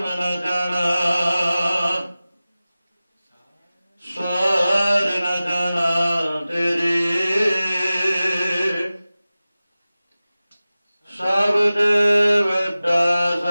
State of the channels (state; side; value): inverted; both; correlation -0.96